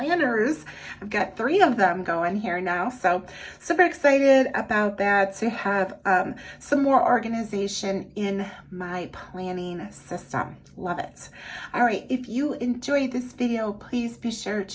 I've got 3 of them going here now. So super excited about that, to have some more organization in my planning system. Love it. All right, if you enjoyed this video, please be sure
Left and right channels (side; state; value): both; identical; correlation 1.00